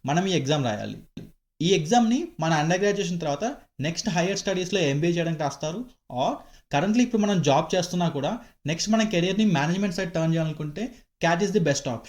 మనం ఈ ఎగ్జామ్ రాయాలి. ఈ ఎగ్జామ్ని మన అండర్ గ్రాడ్యుయేషన్ తర్వాత నెక్స్ట్ హైయర్ స్టడీస్లో ఎంబీఏ చేయడానికి రాస్తారు. ఆర్ కరెంట్లీ ఇప్పుడు మనం జాబ్ చేస్తున్నా కూడా నెక్స్ట్ మన కెరియర్ని మేనేజ్మెంట్ సైడ్ టర్న్ చేయాలనుకుంటే cat is the best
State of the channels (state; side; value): identical; both; correlation 1.00